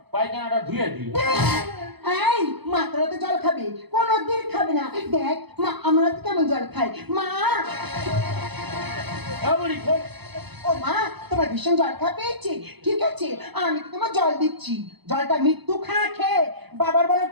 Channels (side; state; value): left; late; 0.98 ms